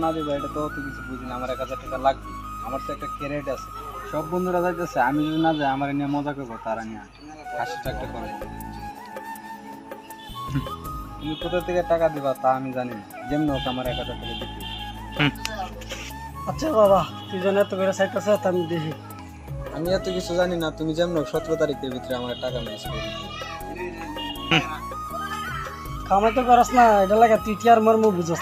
না দিবা এটা তো অত কিছু বুঝি না। আমার 1000 টাকা লাগবে, আমার তো একটা ক্যারেট আছে। সব বন্ধুরা যাইতেছে, আমি যদি না যাই আমার নিয়ে মজা করবো, তারা নিয়ে হাসিটা একটা করবো। তুমি কোথা থেকে টাকা দিবা তা আমি জানি না, যেমন হোক আমার 1000 টাকা দিতে। আচ্ছা বাবা, তুই যেন এত করে চাইতেছ আমি দেখি। আমি এত কিছু জানি না, তুমি যেমন 17 তারিখের ভিতরে আমার টাকা ম্যানেজ করে দিও। কামাই তো করস না, এটা লাগে তুই টিয়ার মর্ম বুঝস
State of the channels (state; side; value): identical; both; correlation 1.00